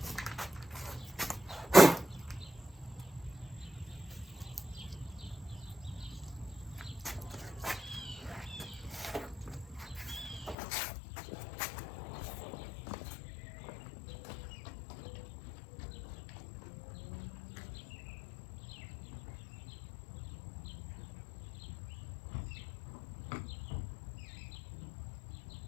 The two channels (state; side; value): drops out; right; at 10.6 s